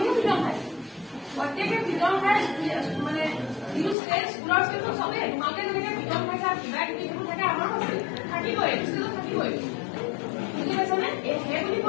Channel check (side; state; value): right; drops out; at 4.0 s